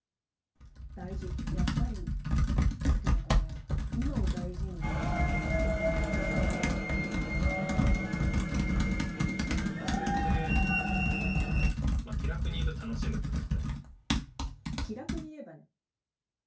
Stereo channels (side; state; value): both; identical; correlation 1.00